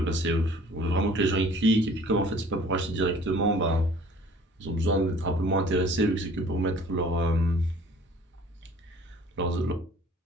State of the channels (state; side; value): normal; both; correlation 0.52